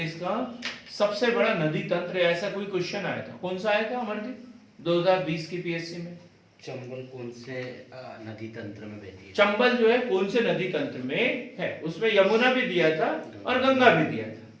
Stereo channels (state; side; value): identical; both; correlation 1.00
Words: का सबसे बड़ा नदी तंत्र, ऐसा कोई क्वेश्चन आया था, कौन सा आया था अमरदीप 2020 की पीएससी में? चंबल कौन से नदी तंत्र में बहती है? चंबल जो है कौन से नदी तंत्र में है, उसमें यमुना भी दिया था और गंगा भी दिया था,